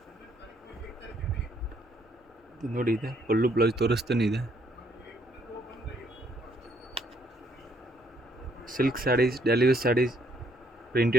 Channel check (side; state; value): both; normal; correlation 0.69